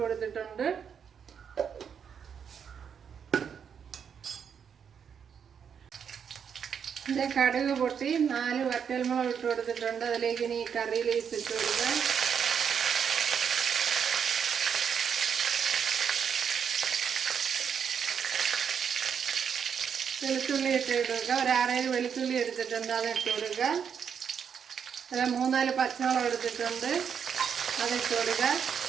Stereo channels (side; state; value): left; quieter; 7.4 dB